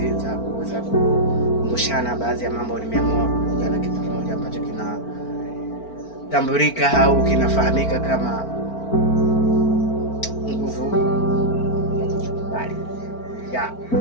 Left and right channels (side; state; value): right; late; 4.4 ms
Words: za kuweza kukumbushana baadhi ya mambo, nimeamua kuja na kitu kimoja ambacho kinatambulika au kinafahamika kama nguvu ya kujikubali.